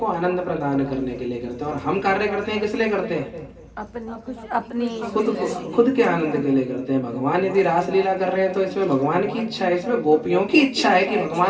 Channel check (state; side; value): identical; both; correlation 1.00